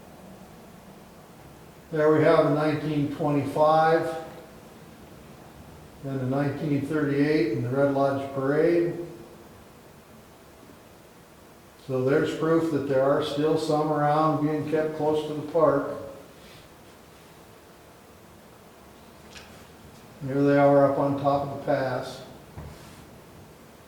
There we have the 1925 and the 1938 and the Red Lodge Parade. So there's proof that there are still some around being kept close to the park. Here they are up on top of the pass.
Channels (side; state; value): both; identical; correlation 1.00